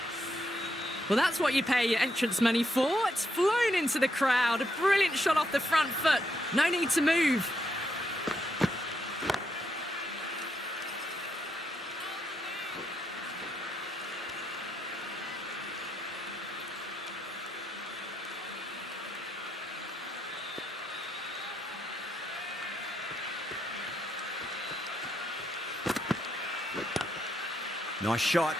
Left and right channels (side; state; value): both; normal; correlation 0.79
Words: Well, that's what you pay your entrance money for. It's flown into the crowd. A brilliant shot off the front foot. No need to move. Nice shot.